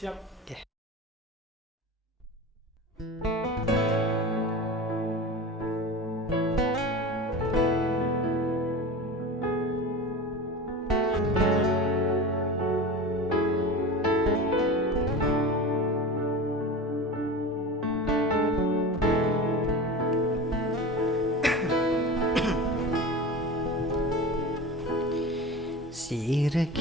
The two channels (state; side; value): normal; both; correlation 0.31